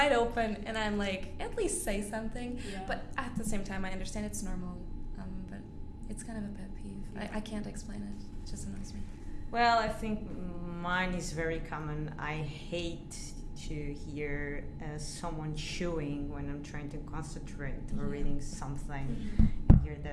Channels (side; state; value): both; identical; correlation 1.00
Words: open, and I'm like, at least say something. Yeah. But at the same time, I understand it's normal, but it's kind of a pet peeve. I can't explain it. It just annoys me. Well, I think mine is very common. I hate to hear someone chewing when I'm trying to concentrate or reading something. I hear